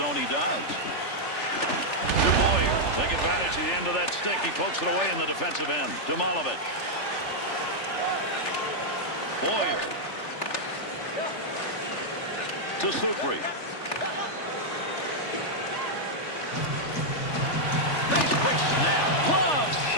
He does. To Boyer. Take advantage of the end of that stick. He pokes it away in the defensive end. To Malovich. Boyer. To Supri. Nice quick snap. Glove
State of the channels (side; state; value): right; late; 3.4 ms